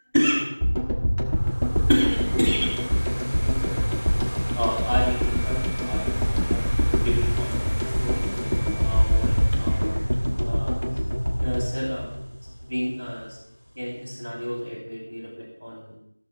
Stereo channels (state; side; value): inverted; both; correlation -1.00